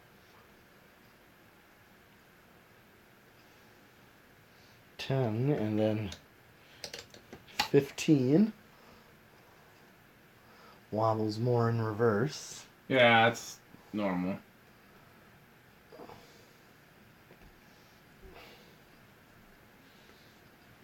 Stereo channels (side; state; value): both; identical; correlation 1.00